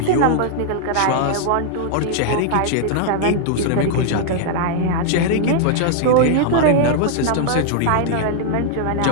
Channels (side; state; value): both; different; correlation -0.01